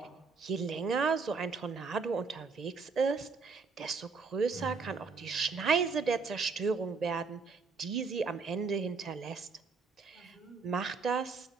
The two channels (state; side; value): quieter; left; 4.8 dB